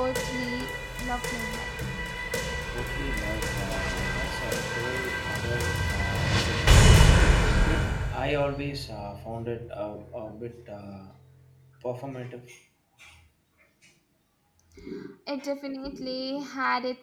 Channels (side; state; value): both; identical; correlation 1.00